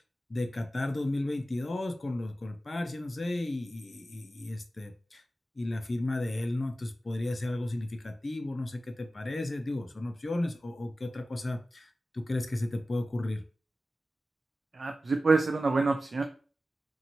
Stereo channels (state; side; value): normal; both; correlation 0.94